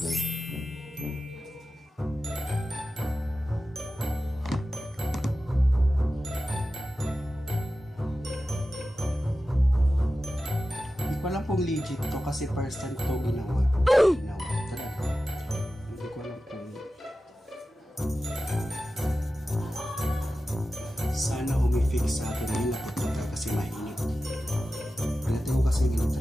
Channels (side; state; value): both; normal; correlation 0.94